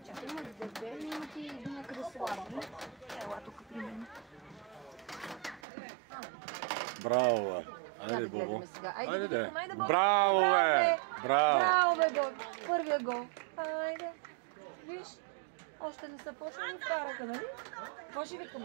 Чакай, имаш дебели и ти някъде слабо. Ела тук при мен. Браво, бе. Айде, Бобо. Айде, да. Браво, бе. Браво. Браво, бе, гол. Първия гол. Айде. Виж, още не са почнали вкараха, нали? Какво ще викаме?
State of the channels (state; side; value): drops out; left; at 5.6 s